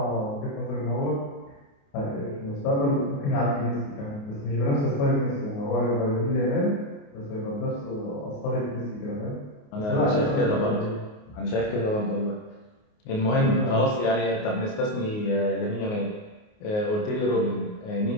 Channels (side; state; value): right; late; 28 ms